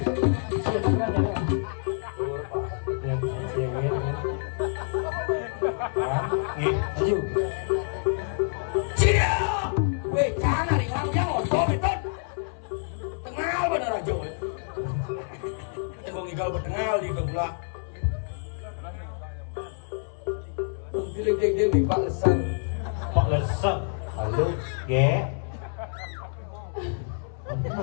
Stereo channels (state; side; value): silent; right; 60 dB below the other